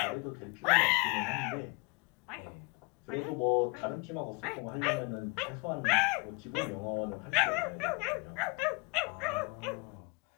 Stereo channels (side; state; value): right; quieter; 29.4 dB